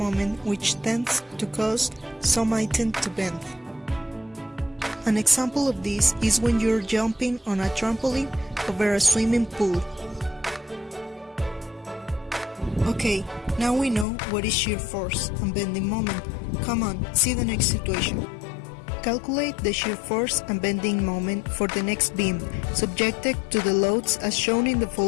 which tends to cause some item to bend. An example of this is when you're jumping on a trampoline over a swimming pool. Okay, now we know what is shear force and bending moment. Come on, see the next situation. Calculate the shear force and bending moment for the next beam, subjected to the loads as shown in the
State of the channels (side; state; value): right; drops out; at 14.1 s